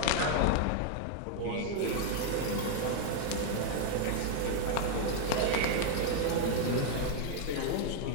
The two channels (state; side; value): different; both; correlation 0.00